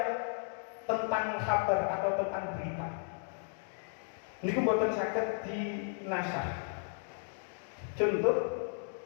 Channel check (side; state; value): right; silent; 55 dB below the other